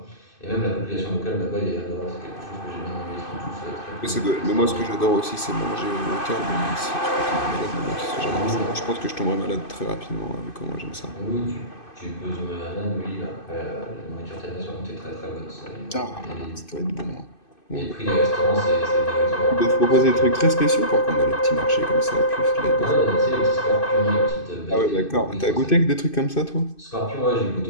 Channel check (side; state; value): right; late; 2.5 ms